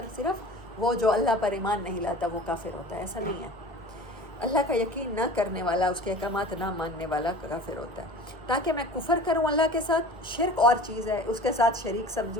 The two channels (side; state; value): both; normal; correlation 0.40